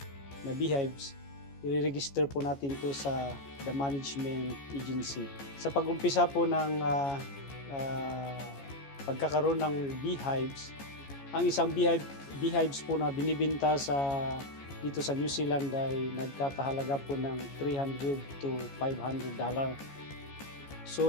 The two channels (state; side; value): late; right; 14 ms